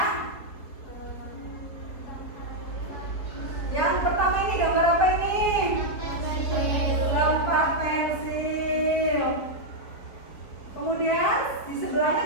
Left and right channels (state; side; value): late; right; 4.5 ms